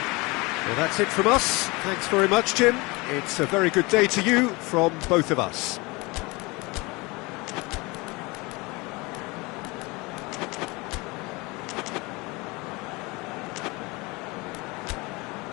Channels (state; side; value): quieter; right; 25.0 dB